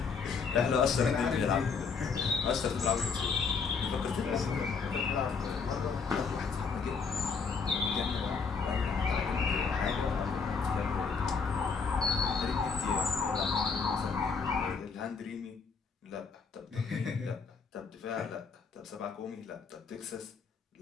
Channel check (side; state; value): right; quieter; 5.3 dB